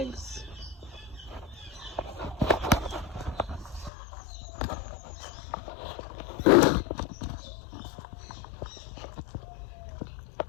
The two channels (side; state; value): right; drops out; at 3.9 s